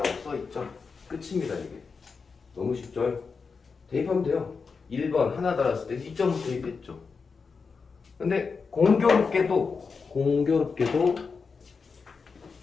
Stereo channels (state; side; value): quieter; right; 5.0 dB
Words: 써있죠. 끝입니다. 이게 너무 쉽죠. 대입하면 돼요. 1번 하나 달았을 때 2.5 대입했죠. 근데 공교롭게도